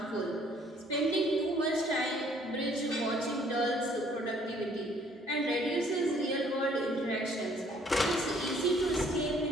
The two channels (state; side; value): normal; both; correlation 0.61